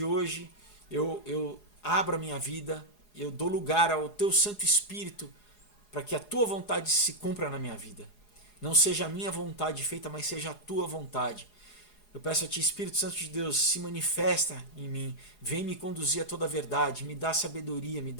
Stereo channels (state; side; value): late; right; 4.8 ms